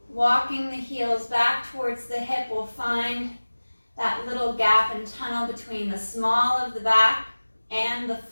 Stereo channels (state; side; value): inverted; both; correlation -1.00